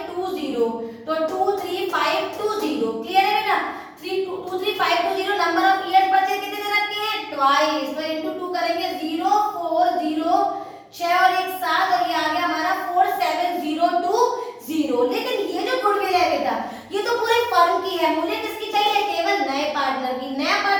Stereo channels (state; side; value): identical; both; correlation 1.00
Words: तो 23520। क्लियर है बेटा। 23520 नंबर ऑफ इयर्स बचे कितने दे रखे हैं, ट्वाइस, तो इनटू 2 करेंगे 040 6 और 1 7 और ये आ गया हमारा 47020। लेकिन ये जो गुडविल है बेटा ये तो पूरे फर्म की है, मुझे किसकी चाहिए, केवल नए पार्टनर की। नया